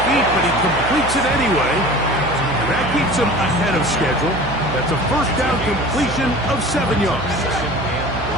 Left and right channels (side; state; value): right; noise; hum, 8 dB below the sound